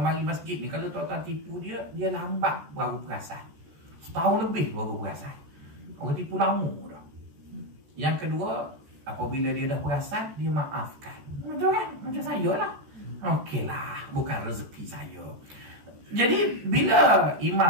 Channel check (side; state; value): left; late; 14 ms